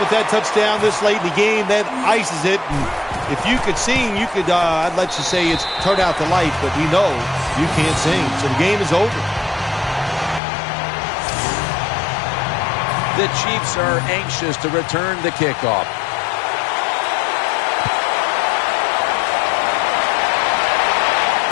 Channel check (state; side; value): drops out; right; at 10.4 s